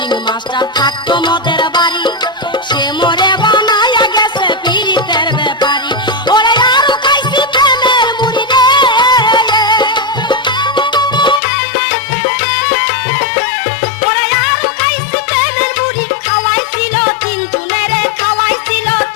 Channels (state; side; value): drops out; right; at 11.4 s